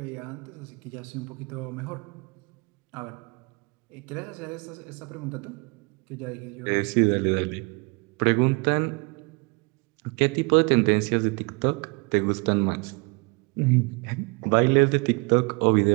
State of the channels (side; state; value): left; quieter; 29.6 dB